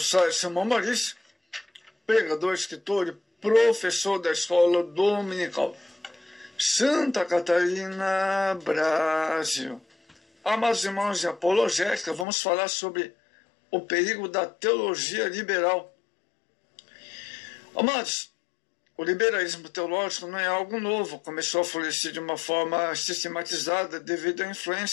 sai Simão Maurício, pregador, escritor e professor da escola dominical, Santa Catarina, Brasil. Amados irmãos de apologética, vamos falar sobre o perigo da teologia liberal. Amados, o liberalismo teológico não é algo novo, começou a florescer de uma forma sistematizada devido à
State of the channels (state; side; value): drops out; right; at 12.2 s